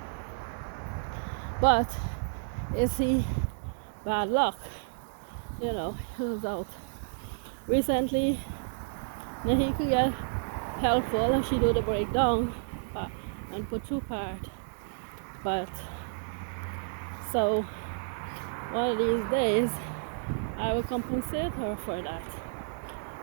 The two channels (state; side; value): silent; left; digital silence